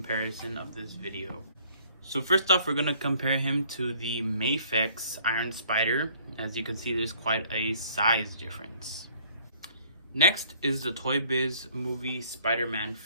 of this video. So first off, we're gonna compare him to the Mafex Iron Spider. As you can see, there's quite a size difference. Next is the Toy Biz movie Spider-Man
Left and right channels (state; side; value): inverted; both; correlation -0.58